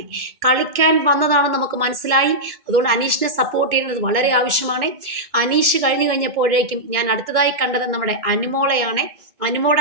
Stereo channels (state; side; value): late; left; 2.1 ms